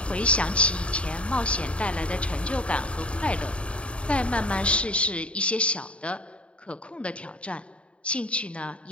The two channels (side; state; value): right; late; 0.060 ms